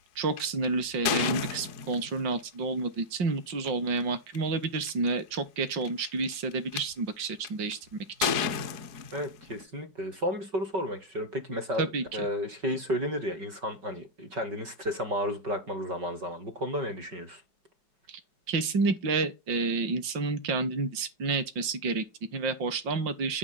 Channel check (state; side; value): late; left; 5.6 ms